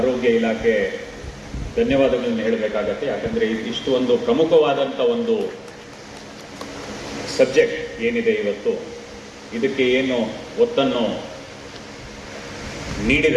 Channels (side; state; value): both; identical; correlation 1.00